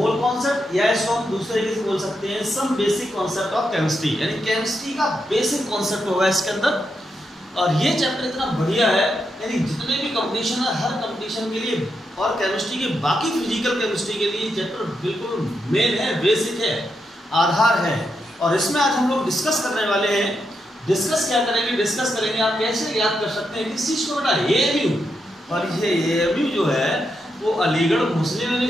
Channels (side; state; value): both; normal; correlation 0.83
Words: या इसको हम दूसरे तरीके से बोल सकते हैं some basic concept of chemistry, यानी केमिस्ट्री का बेसिक कॉन्सेप्ट होगा इसके अंदर। और ये चैप्टर इतना बढ़िया है, यानी जितने भी कंपटीशन है हर कंपटीशन के लिए और केमिस्ट्री के बाकी फिजिकल केमिस्ट्री के लिए चैप्टर बिल्कुल मेन है, बेसिक है, आधार है। और इसमें आज हम लोग डिस्कस करने वाले हैं। डिस्कस करेंगे आप कैसे याद कर सकते हैं किस चीज को बेटा, AMU। और ये AMU जो है वो अलीगढ़ मुस्लिम